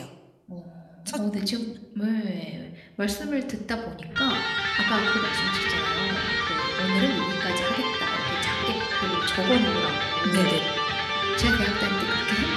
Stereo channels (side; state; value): both; identical; correlation 1.00